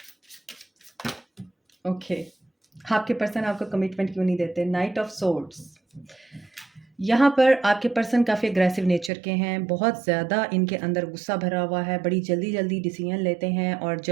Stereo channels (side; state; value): left; drops out; at 9.1 s